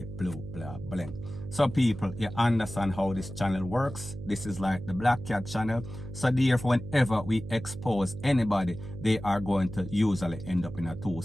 blue, blah, blank. So people, you understand how this channel works. This is like the Black Cat channel. So therefore, whenever we expose anybody, they are going to usually end up in a two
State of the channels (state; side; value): noise; right; hum, 11 dB below the sound